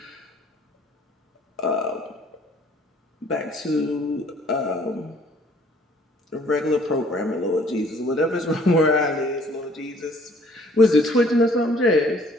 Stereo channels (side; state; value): both; normal; correlation 0.58